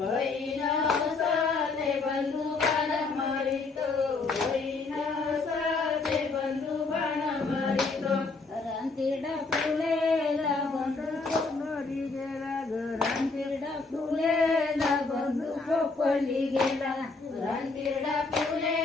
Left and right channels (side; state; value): right; quieter; 3.9 dB